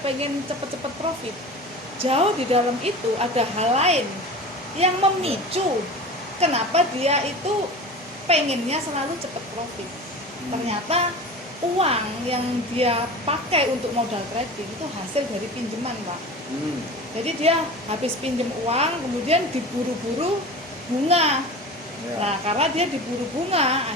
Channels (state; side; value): normal; both; correlation 0.34